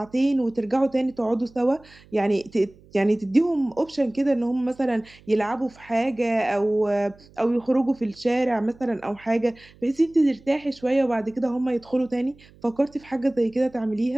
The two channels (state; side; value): noise; right; hum, 26 dB below the sound